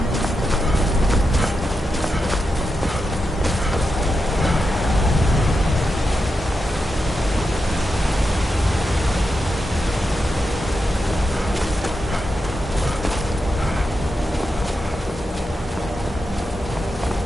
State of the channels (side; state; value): both; normal; correlation 0.87